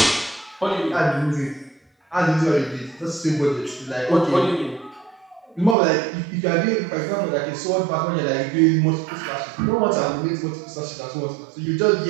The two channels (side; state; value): left; drops out; at 5.8 s